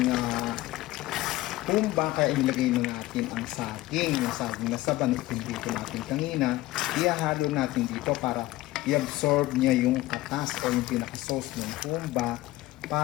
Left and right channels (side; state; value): right; quieter; 17.5 dB